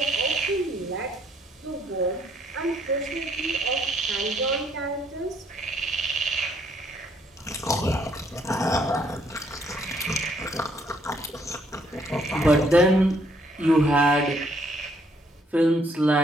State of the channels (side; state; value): both; normal; correlation 0.69